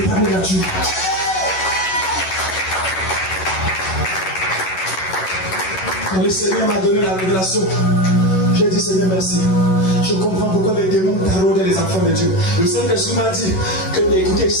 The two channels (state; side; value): late; right; 11 ms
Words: nature. Quand le Seigneur m'a donné la révélation, j'ai dit Seigneur merci. Je comprends pourquoi les démons taraudaient les enfants de Dieu. Le Saint-Esprit m'a dit que, écoutez,